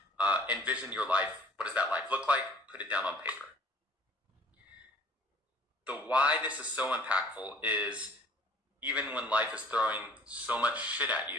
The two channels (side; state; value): both; normal; correlation 0.54